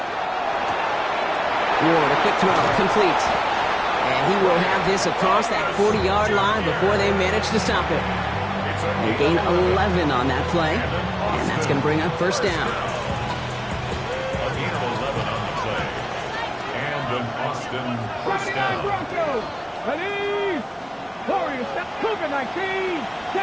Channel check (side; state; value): both; identical; correlation 1.00